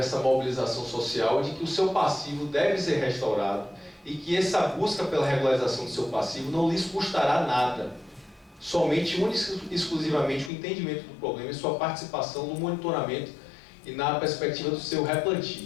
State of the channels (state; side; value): drops out; right; at 10.5 s